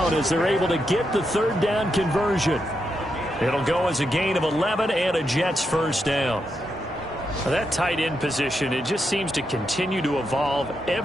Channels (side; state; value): both; normal; correlation 0.84